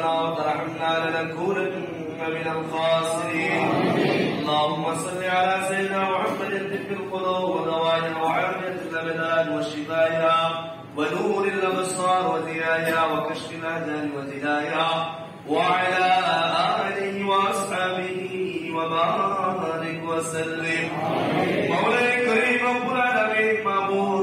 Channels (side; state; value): both; identical; correlation 1.00